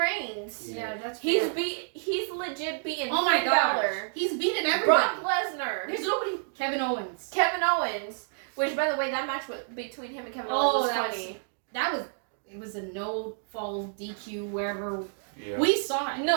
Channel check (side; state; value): left; silent; digital silence